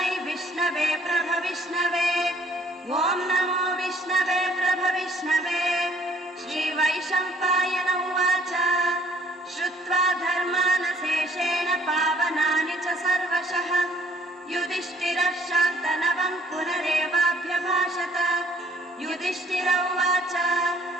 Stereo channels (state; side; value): normal; both; correlation 0.58